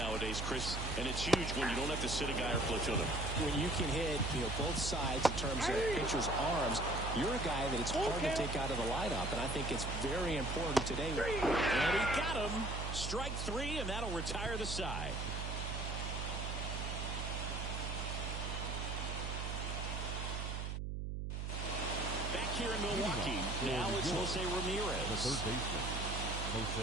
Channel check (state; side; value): noise; right; hum, 3 dB below the sound